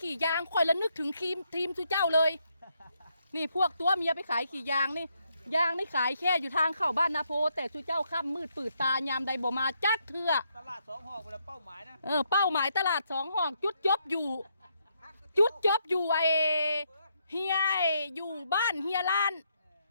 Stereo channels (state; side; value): inverted; both; correlation -0.76